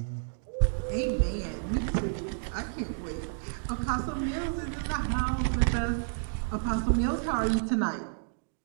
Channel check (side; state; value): left; silent; digital silence